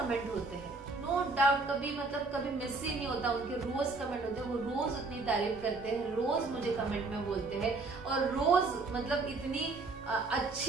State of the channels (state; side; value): quieter; left; 3.6 dB